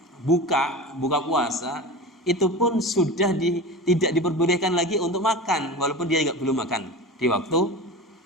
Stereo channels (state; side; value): normal; both; correlation 0.31